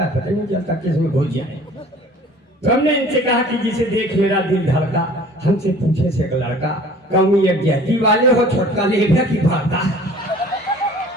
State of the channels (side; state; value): both; normal; correlation 0.48